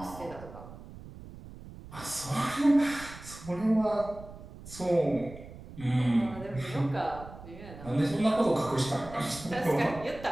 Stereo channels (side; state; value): right; noise; rumble, 15 dB below the sound